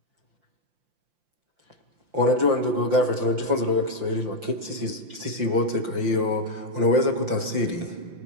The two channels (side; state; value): left; late; 5.8 ms